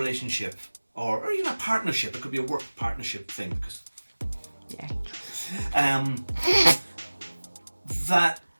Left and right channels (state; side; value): inverted; both; correlation -1.00